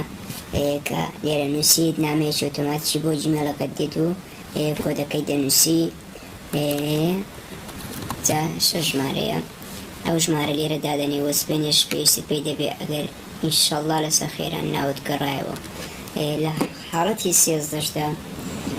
کە لێرە نووسیت نامەیەکی ئۆتۆماتیکی بۆ جیمەلەکەت دێت و کۆدەکەی دەنووسی جا شەش ژمارەیە ئەو ژمارە لێرە دادەنێ وەسپێنێش پێویستت پێی دەبێ ئەگەر ئینشەڵڵا لەسەر خێران ناوت گەڕایەوە لە حاڵەتی 13دا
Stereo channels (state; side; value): identical; both; correlation 1.00